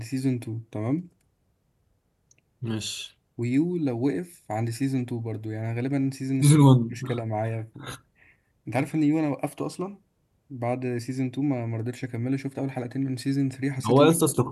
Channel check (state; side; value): identical; both; correlation 1.00